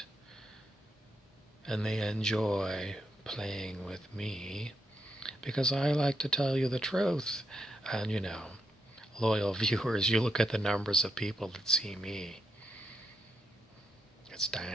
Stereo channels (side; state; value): both; normal; correlation 0.81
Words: And they enjoy playing with me, because I like to tell you the truth. And loyal viewers, you look at the numbers of people that see me. It's